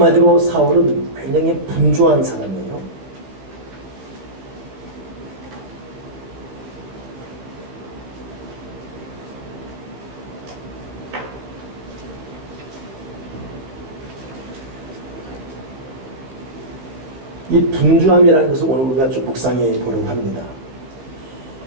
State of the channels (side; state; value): left; late; 15 ms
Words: 사울은 굉장히 분주한 사람이에요. 이 분주함이라는 것을 오늘 우리가 좀 묵상해 보려고 합니다.